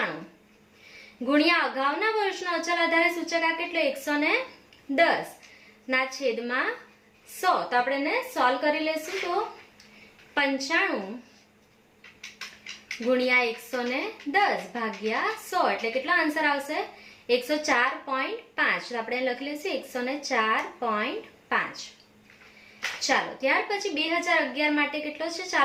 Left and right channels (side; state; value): both; identical; correlation 1.00